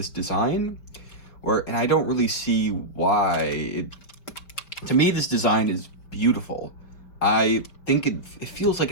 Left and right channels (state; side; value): late; right; 5.2 ms